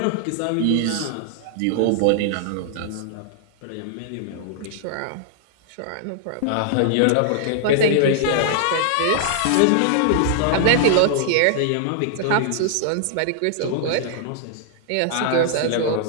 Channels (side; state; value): both; different; correlation -0.01